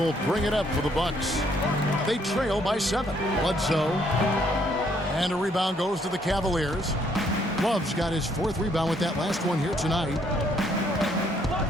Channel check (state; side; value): normal; both; correlation 0.68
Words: bring it up for the Bucks. They trail by 7. Bledsoe. And a rebound goes to the Cavaliers. Love's got his 4th rebound with that last one here tonight.